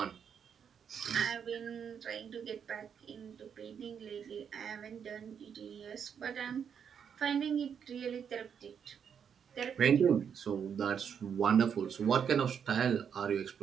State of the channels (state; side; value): quieter; left; 7.5 dB